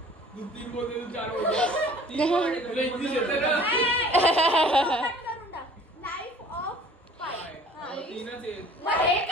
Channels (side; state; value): both; normal; correlation 0.50